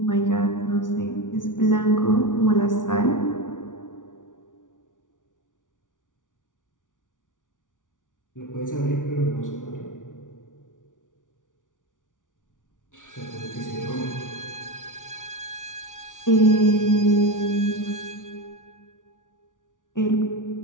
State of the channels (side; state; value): right; late; 0.87 ms